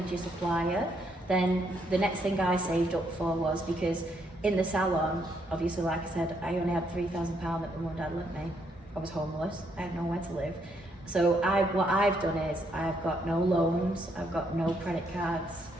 supplier. Then the next thing I saved up for was, because in the salon, obviously, like I said, I only had £3,000 that my mum and dad lent me. I was homeless, I had nowhere to live. So what I've done is, I've got no loans, I've got no credit cards,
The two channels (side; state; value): both; normal; correlation 0.74